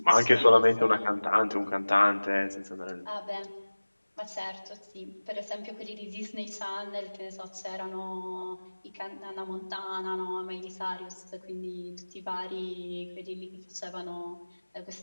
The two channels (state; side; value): inverted; both; correlation -1.00